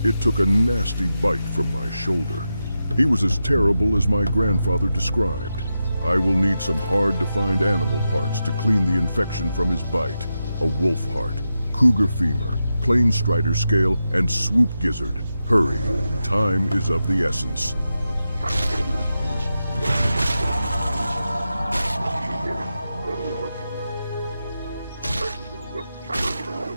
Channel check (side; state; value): both; inverted; correlation -0.89